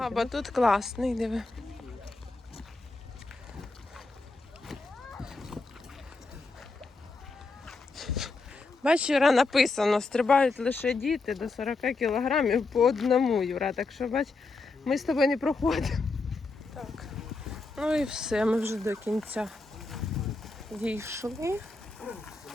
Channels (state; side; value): quieter; right; 3.6 dB